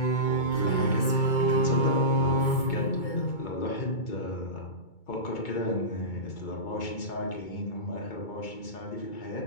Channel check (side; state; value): right; late; 2.2 ms